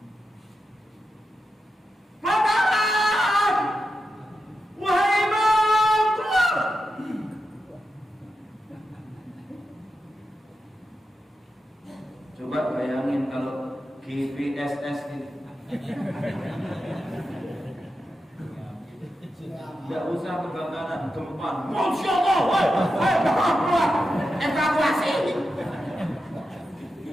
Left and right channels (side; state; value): both; normal; correlation 0.89